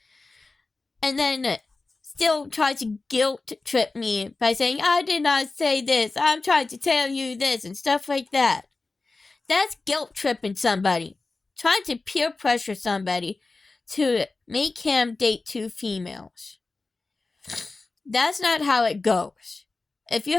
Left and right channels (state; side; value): quieter; right; 3.6 dB